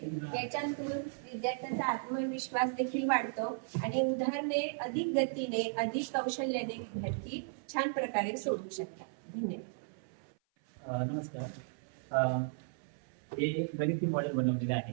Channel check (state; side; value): silent; left; 54 dB below the other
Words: याच्यातून विद्यार्थ्यांचा आत्मविश्वास देखील वाढतो आणि उदाहरणे अधिक गतीने, अधिक कौशल्याने विद्यार्थी छान प्रकारे सोडवू शकतात. धन्यवाद. नमस्कार. हे एक गणिती मॉडेल बनवलेले आहे.